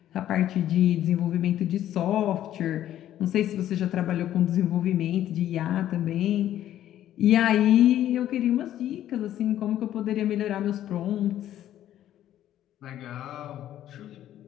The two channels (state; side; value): quieter; right; 12.1 dB